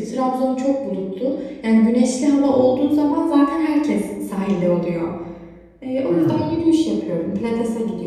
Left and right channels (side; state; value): both; identical; correlation 1.00